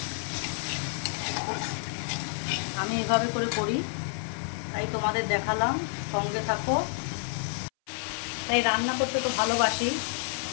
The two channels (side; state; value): right; silent; 58 dB below the other